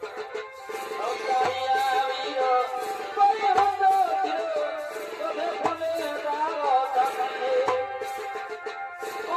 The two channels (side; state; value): both; identical; correlation 1.00